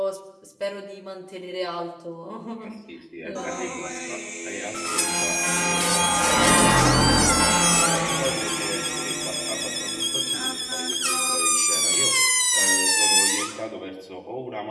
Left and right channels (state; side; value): identical; both; correlation 1.00